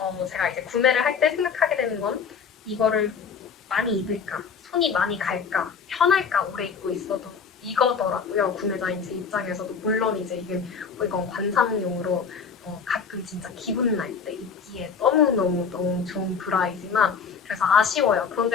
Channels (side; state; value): right; quieter; 6.1 dB